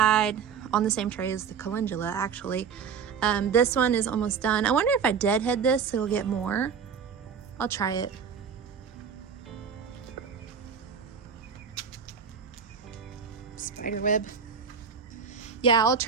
on the same tray as the calendula, actually. This one is almost done. I wonder if I deadhead this, it'll get more. I'll try it. Spider web. Yeah, I'll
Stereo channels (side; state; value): left; quieter; 6.5 dB